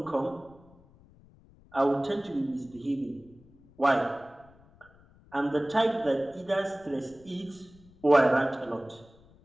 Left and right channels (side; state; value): left; noise; rumble, 26 dB below the sound